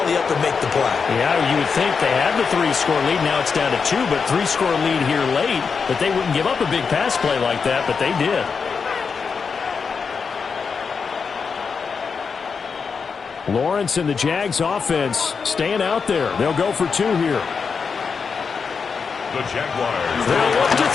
up and make the play. Yeah, you would think they had the 3-score lead. Now it's down to 2, but 3-score lead here late. But they wouldn't give up a big pass play like that, but they did. Lawrence and the Jags offense staying out there. They'll go for 2 here. The Jaguars. They'll look to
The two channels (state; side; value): quieter; right; 5.6 dB